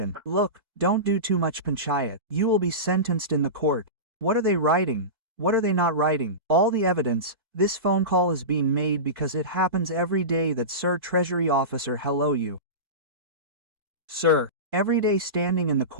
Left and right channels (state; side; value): late; left; 2.5 ms